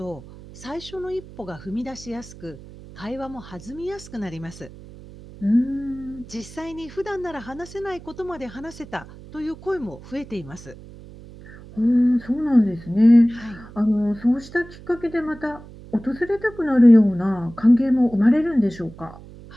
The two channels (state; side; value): noise; right; hum, 18 dB below the sound